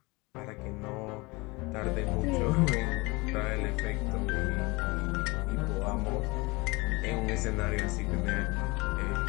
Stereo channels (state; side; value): quieter; right; 24.8 dB